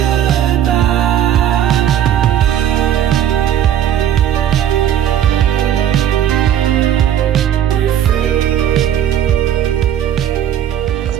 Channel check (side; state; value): left; quieter; 10.3 dB